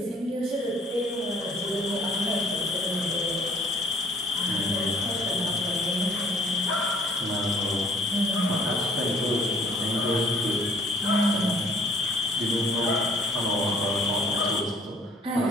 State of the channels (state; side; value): normal; both; correlation 0.59